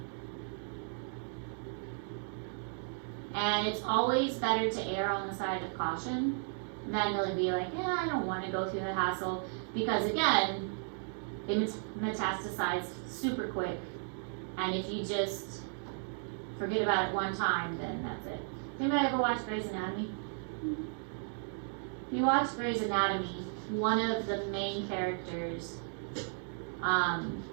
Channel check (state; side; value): silent; left; 55 dB below the other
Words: And it's always better to err on the side of caution than to be like, yeah, I don't want to go through the hassle, because again, they metastasize super quick, and if you just forget about it one time, then that's it. Anybody ever watch Grey's Anatomy? If you watch Grey's Anatomy, one of the main characters